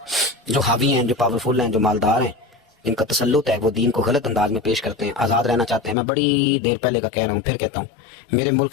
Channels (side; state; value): right; drops out; at 6.0 s